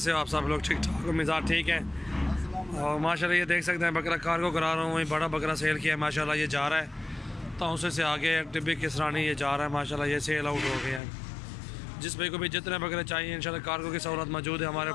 हो आप सब लोग? ठीक ठाक, मिजाज ठीक है। और माशाल्लाह ये देख सकते हैं बकरा कार्गो करा रहा हूँ। वही बड़ा बकरा सेल किया है माशाल्लाह, ये जा रहा है तौसे से आगे टिब्बी किसरानी ये जा रहा है माशाल्लाह, ये सेल आउट हो गया है। जिस भाई को भी जितने बकरे चाहिए इंशाल्लाह कार्गो की सहूलत मौजूद है हमारे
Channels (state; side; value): drops out; right; at 11.0 s